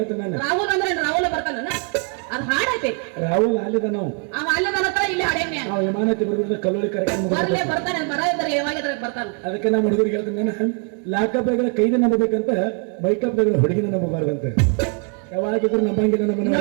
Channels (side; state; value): left; quieter; 39.0 dB